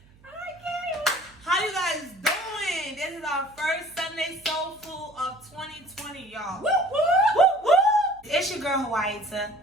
How you guys doing? This is our first Sunday Soul Food of 2020, y'all. Woo, woo, woo, woo. It's your girl, WHATS, and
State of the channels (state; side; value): noise; right; hum, 28 dB below the sound